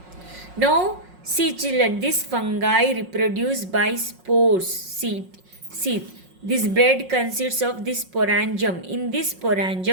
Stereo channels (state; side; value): late; left; 5.5 ms